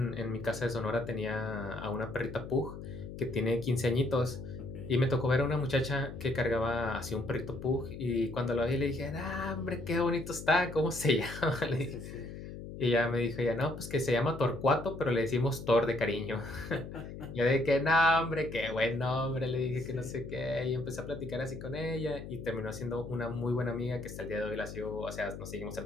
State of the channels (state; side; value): noise; left; hum, 10 dB below the sound